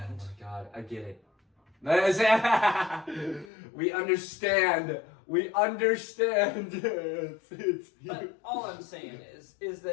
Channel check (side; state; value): right; drops out; at 3.5 s